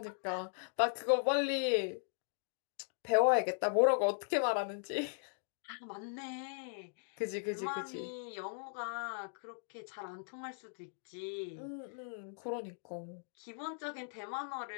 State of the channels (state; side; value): silent; right; digital silence